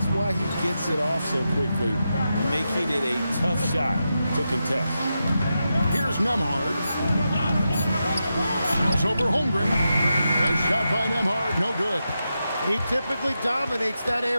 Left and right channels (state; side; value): inverted; both; correlation -0.88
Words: why he gets it off so quickly, making it a tough shot to contest. Here's Nembhard. Shoots over Holmgren. A shot by Nembhard, no good. He typically dominates that